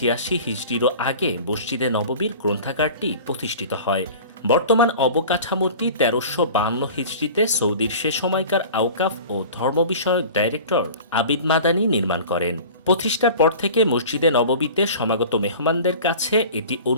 হিজরিরও আগে মসজিদে নববীর গ্রন্থাগারটি প্রতিষ্ঠিত হয়। বর্তমান অবকাঠামোটি ১৩৫২ হিজরিতে সৌদির সে সময়কার আওকাফ ও ধর্ম বিষয়ক ডাইরেক্টর আবিদ মাদানি নির্মাণ করেন। প্রতিষ্ঠার পর থেকে মসজিদে নববীতে সমাগত মেহমানদের কাছে এটি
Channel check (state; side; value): inverted; both; correlation -0.40